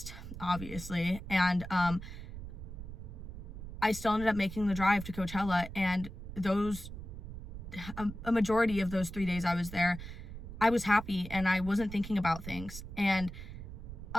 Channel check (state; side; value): noise; right; rumble, 10 dB below the sound